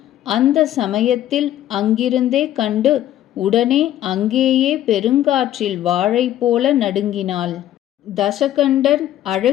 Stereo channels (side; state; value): right; quieter; 12.5 dB